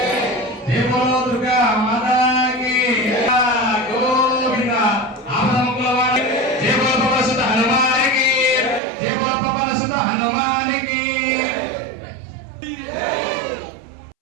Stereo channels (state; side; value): drops out; left; at 8.8 s